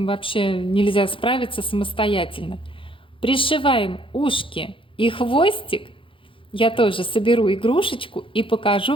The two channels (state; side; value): late; right; 0.25 ms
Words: вообще нельзя справиться самостоятельно. Пришиваем ушки и хвостик Я тоже соберу игрушечку и